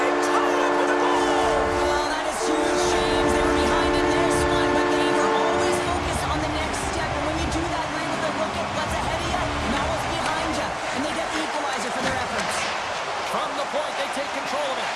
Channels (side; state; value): both; identical; correlation 1.00